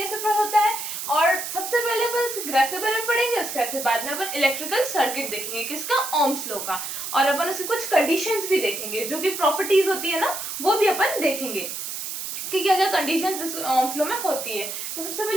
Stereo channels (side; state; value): right; noise; hiss, 6 dB below the sound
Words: होता है, और सबसे पहले अपन इस ग्राफ के बारे में पढ़ेंगे। उसके बाद में अपन इलेक्ट्रिकल सर्किट देखेंगे किसका, ओम्स लॉ का, और अपन उसकी कुछ कंडीशंस भी देखेंगे, जो भी प्रॉपर्टीज होती है ना वो भी अपन देखेंगे कि क्या क्या कंडीशंस इस ओम्स लॉ में होती है। तो सबसे